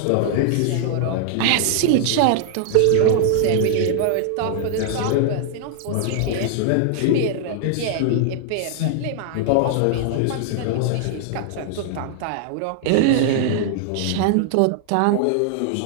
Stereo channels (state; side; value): different; both; correlation 0.00